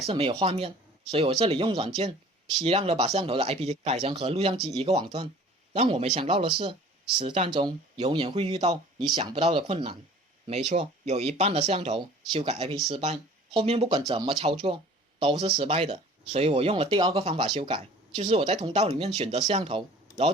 是没有画面。所以我这里用软件批量的把摄像头的 IP 改成和录像机一个网段。让我没想到的是，实战中永远会遇到你想不到的困难。没错，有一半的摄像头修改 IP 失败，后面不管怎么操作都是失败的。所以我用了第2个方法修改，就是我在通道里面选择摄像头，然后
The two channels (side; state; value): both; normal; correlation 0.48